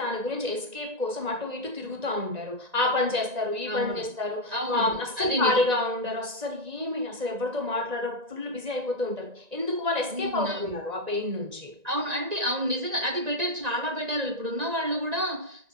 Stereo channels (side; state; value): left; late; 1.9 ms